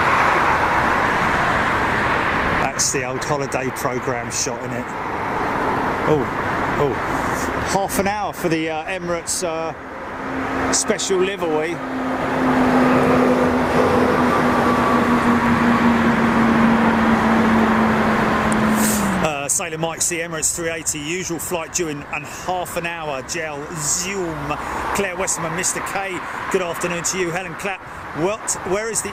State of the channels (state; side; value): identical; both; correlation 1.00